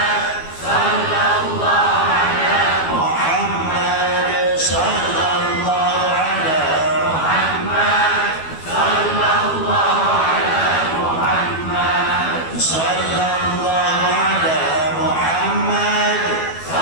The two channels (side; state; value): right; late; 12 ms